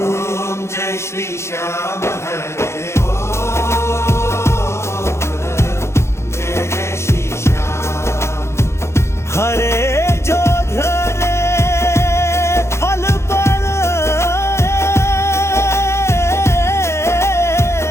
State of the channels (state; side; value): late; right; 0.13 ms